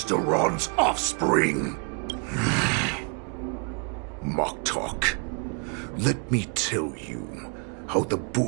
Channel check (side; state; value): left; quieter; 37.1 dB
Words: Duran's offspring. Moktok, let me tell you how the